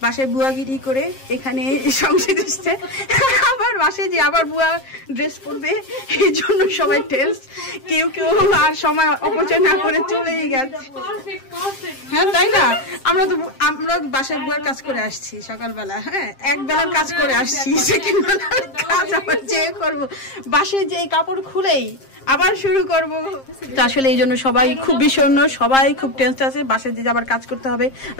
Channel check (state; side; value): late; right; 7.5 ms